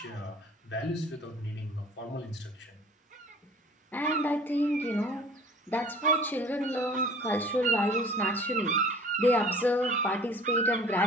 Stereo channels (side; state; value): both; normal; correlation 0.47